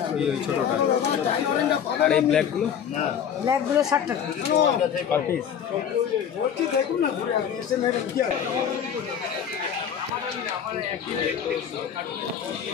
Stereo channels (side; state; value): right; quieter; 8.3 dB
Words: ওই ছোটটা। আর এই ব্ল্যাকগুলো? ব্ল্যাকগুলো 60 টাকা পার পিস। দেখুন না, ঘুরে আপনি এসে মেরে কি আছে?